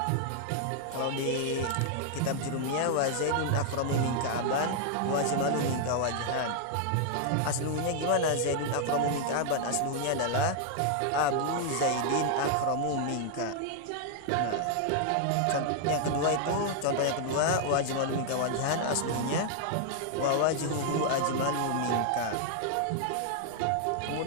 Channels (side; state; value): both; different; correlation 0.00